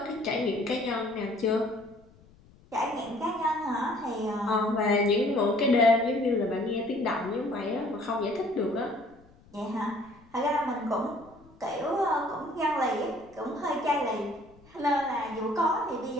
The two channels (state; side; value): noise; left; rumble, 26 dB below the sound